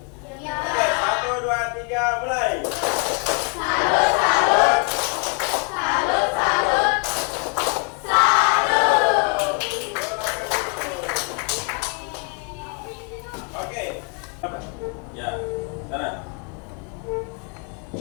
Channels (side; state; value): right; quieter; 36.5 dB